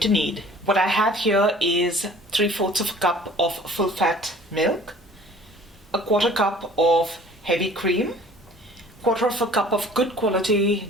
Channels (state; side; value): normal; both; correlation 0.50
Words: need. What I have here is 3/4 of a cup of full fat milk, a 1/4 cup of heavy cream, 1/4 of a cup of good quality